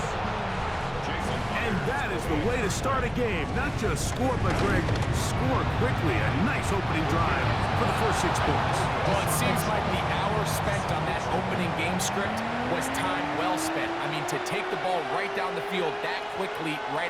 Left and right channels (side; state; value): both; identical; correlation 1.00